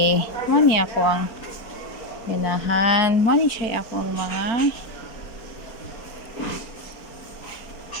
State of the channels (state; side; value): late; right; 4.3 ms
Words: Mani ako ang ganahan. Mani siya ako ang mga